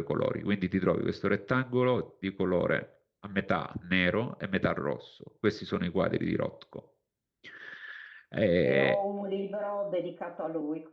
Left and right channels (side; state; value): both; identical; correlation 1.00